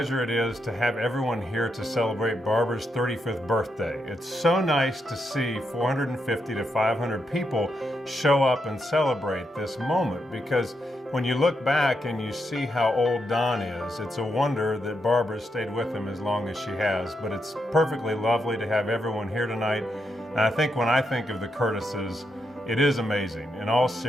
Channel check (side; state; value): both; normal; correlation 0.82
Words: it is to have everyone here to celebrate Barbara's 35th birthday. It's so nice to see 450 to 500 people show up and celebrate this moment, because when you look back and you see how old Don is, it's a wonder that Barbara stayed with him as long as she has. But it's perfectly lovely to have everyone here tonight. And I think when I think of the Curtises, it is amazing, in all